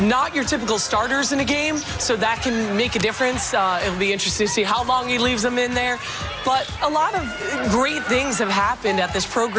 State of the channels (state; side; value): identical; both; correlation 1.00